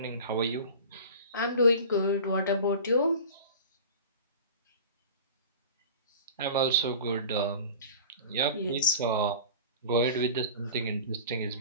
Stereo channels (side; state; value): both; inverted; correlation -0.37